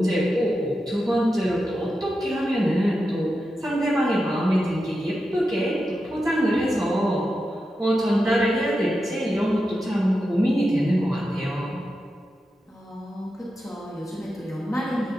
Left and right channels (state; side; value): normal; both; correlation 0.89